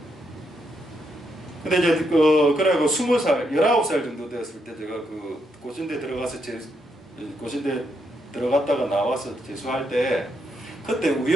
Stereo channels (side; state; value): both; normal; correlation 0.79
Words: 근데 이제 그래고 20살, 19살 정도 되었을 때 제가 그 고신대 들어가서 고신대 들어갔다가 나와서 재수할 때 그때